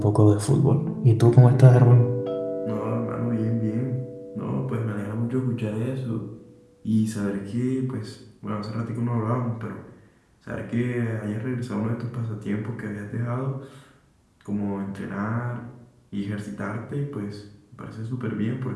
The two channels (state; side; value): identical; both; correlation 1.00